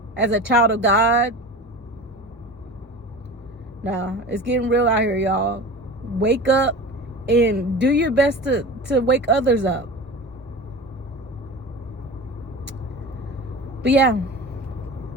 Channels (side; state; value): both; normal; correlation 0.33